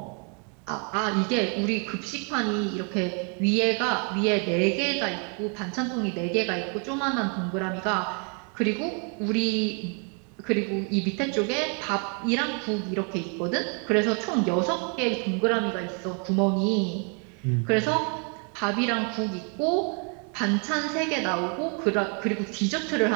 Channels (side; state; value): left; quieter; 38.0 dB